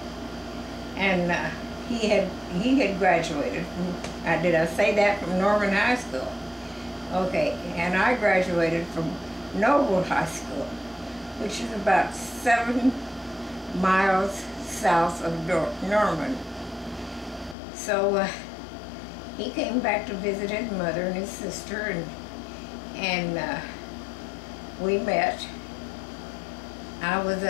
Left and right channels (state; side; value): drops out; right; at 17.6 s